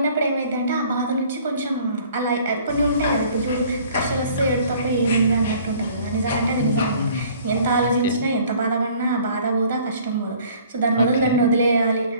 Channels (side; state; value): both; inverted; correlation -0.54